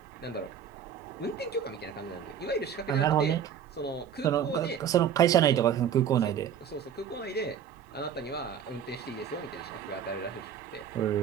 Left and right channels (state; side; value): quieter; left; 8.3 dB